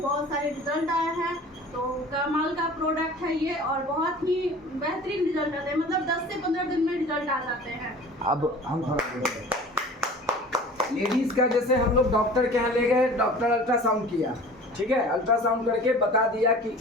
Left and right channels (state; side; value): normal; both; correlation 0.43